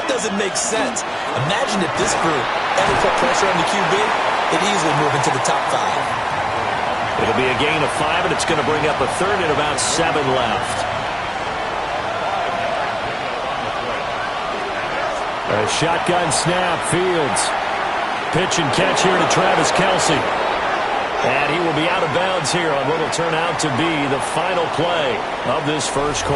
doesn't make sense. Imagine if this group ever put pressure on the QB, it'd easily move into the top 5. It'll be a gain of 5, and it's going to bring up a third and about 7 left. A shotgun snap, Fields. Pitch and catch here to Travis Kelce. And he will be out of bounds here on what will turn out to be the final play of this first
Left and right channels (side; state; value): both; identical; correlation 1.00